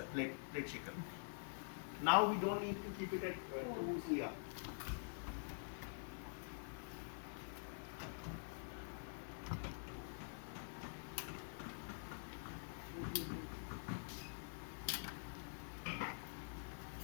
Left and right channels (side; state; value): right; silent; digital silence